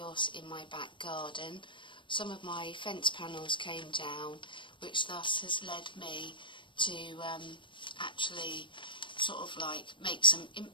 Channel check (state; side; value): late; right; 0.24 ms